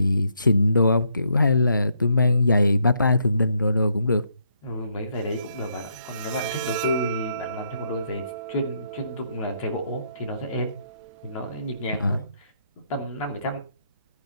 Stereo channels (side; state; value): both; inverted; correlation -0.75